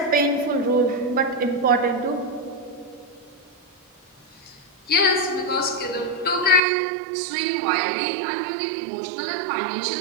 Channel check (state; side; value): drops out; left; at 6.6 s